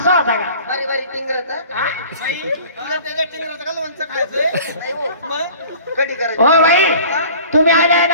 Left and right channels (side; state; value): both; inverted; correlation -0.46